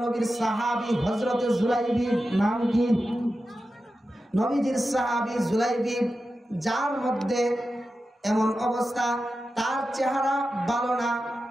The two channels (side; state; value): both; normal; correlation 0.92